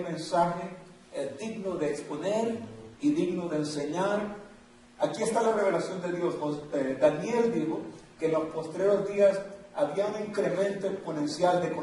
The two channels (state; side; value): identical; both; correlation 1.00